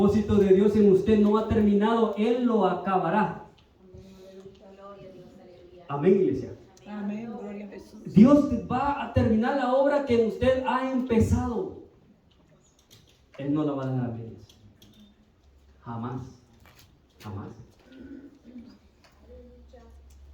de Dios en usted no ha terminado, Él lo acabará. Amén, iglesia. Amén, gloria a Jesús. Dios va a terminar la obra que usted ha empezado. Él no la va a dejar a medias. Jamás. Jamás.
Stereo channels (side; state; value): both; identical; correlation 1.00